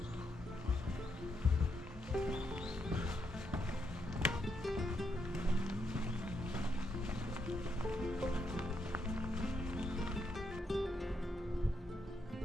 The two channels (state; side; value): normal; both; correlation 0.80